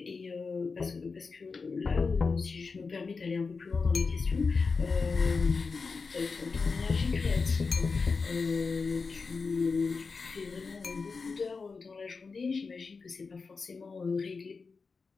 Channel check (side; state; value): right; quieter; 4.6 dB